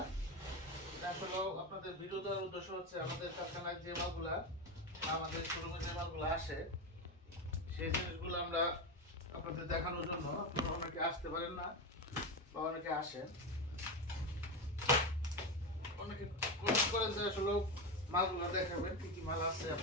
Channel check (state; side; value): normal; both; correlation 0.16